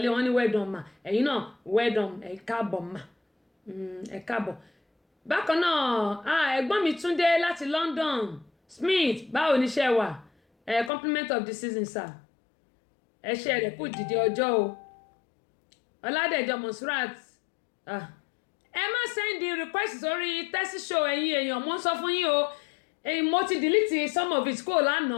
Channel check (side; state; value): right; drops out; at 10.9 s